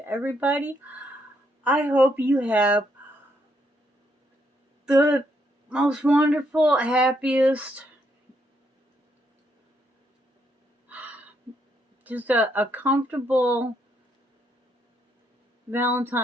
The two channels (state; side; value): normal; both; correlation 0.75